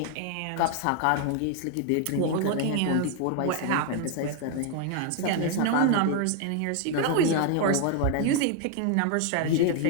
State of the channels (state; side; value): different; both; correlation 0.00